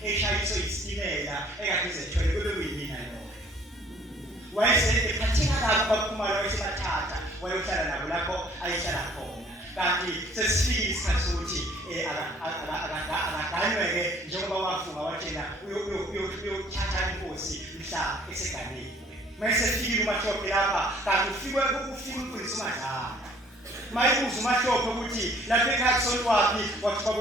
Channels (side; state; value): both; normal; correlation 0.57